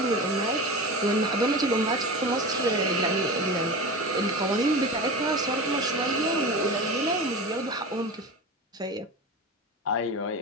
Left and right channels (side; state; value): both; normal; correlation 0.29